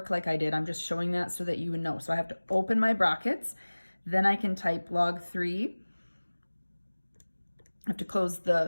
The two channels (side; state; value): both; inverted; correlation -1.00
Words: like I did. I'm just showing that so that you would know. So I have to open my brackets. Then I can type log 3. I have to close